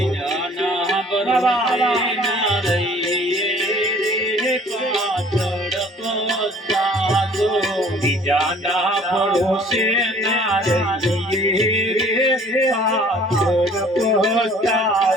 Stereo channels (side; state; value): both; normal; correlation 0.53